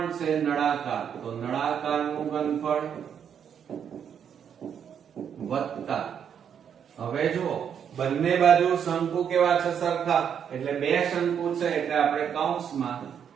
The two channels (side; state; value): left; quieter; 8.1 dB